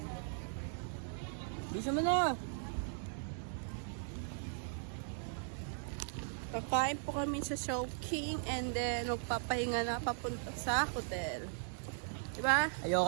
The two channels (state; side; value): silent; left; digital silence